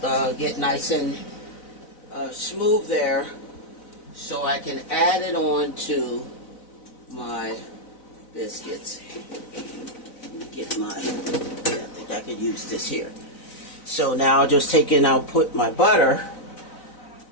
get nice and smooth there, so I can add it on to my biscuits. Let me get my. I think I could use this here. So now I'll just take and I'll put my butter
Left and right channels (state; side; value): late; right; 4.0 ms